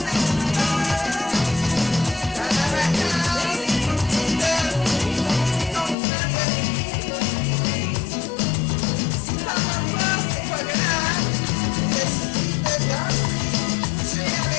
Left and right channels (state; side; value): drops out; right; at 6.0 s